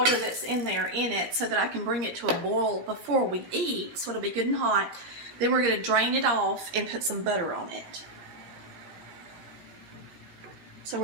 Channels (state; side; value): late; left; 17 ms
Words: that's in there in it so that I can bring it to a boil before we eat, so it'll be good and hot. Then we're going to drain it off and put some butter on it. So